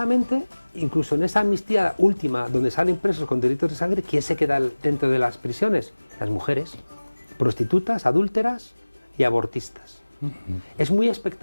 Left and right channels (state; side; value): inverted; both; correlation -1.00